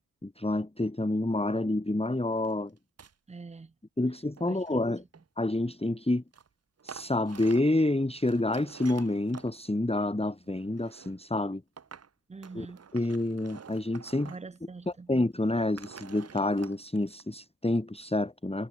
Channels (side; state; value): both; normal; correlation 0.78